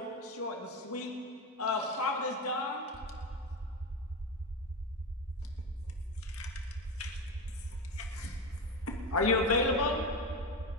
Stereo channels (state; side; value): normal; both; correlation 0.17